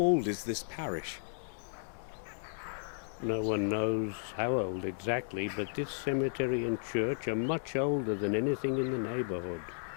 is this parish? No one knows how old exactly, but this cemetery and church are much older than anything in the neighborhood.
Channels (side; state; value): right; silent; digital silence